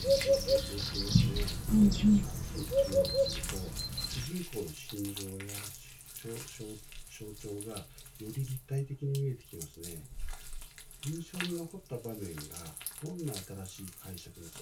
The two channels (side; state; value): both; identical; correlation 1.00